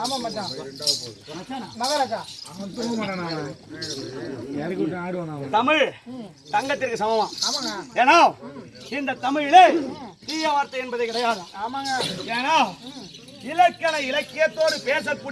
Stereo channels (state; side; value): identical; both; correlation 1.00